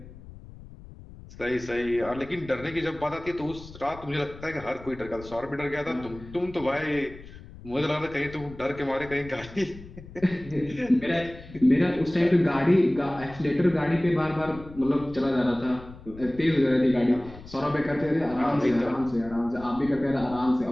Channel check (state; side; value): noise; left; rumble, 17 dB below the sound